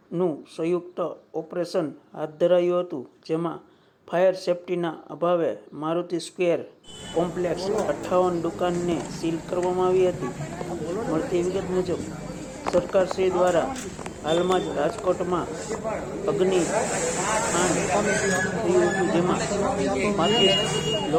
સંયુક્ત ઓપરેશન હાથ ધરાયું હતું, જેમાં ફાયર સેફટીના અભાવે મારુતિ સ્ક્વેર કોમ્પ્લેક્સ 58 દુકાનને સીલ કરવામાં આવી હતી. મળતી વિગત મુજબ સરકારશ્રી દ્વારા હાલમાં જ રાજકોટમાં અગ્નિકાંડ થયું હતું, જેમાં 35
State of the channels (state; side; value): identical; both; correlation 1.00